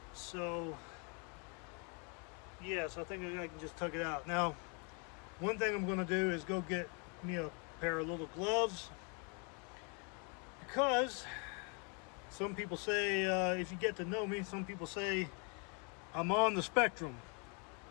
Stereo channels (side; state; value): right; quieter; 35.6 dB